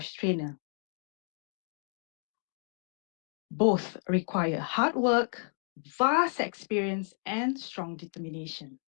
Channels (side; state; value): right; silent; 56 dB below the other